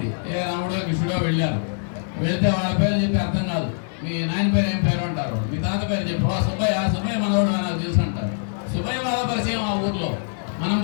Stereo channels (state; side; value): silent; right; 63 dB below the other